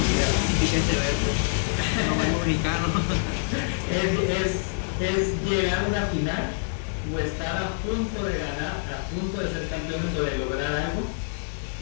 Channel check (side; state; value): right; silent; digital silence